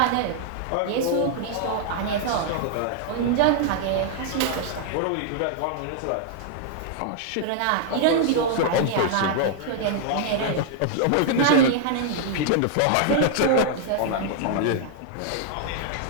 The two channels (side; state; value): both; different; correlation 0.00